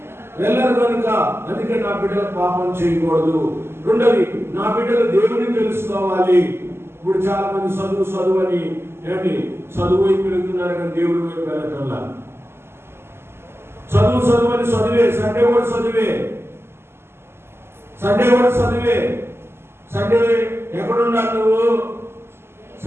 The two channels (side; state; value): left; late; 0.12 ms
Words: వెళ్ళరు కనుక, అందుకే నా బిడ్డలు పాపం చేయకూడదు. రెండోది, నా బిడ్డలు దేవుని తెలుసుకోవాలి. ఇప్పుడు చాలా మంది చదువు అని ఏంటి చదువు వైపు వెళ్తున్నారు కానీ దేవుడి వైపు వెళ్ళటంలా. చదువు అని చదివే, సండే కూడా చదివే, సండే ఎక్కడుండాలి నువ్వు?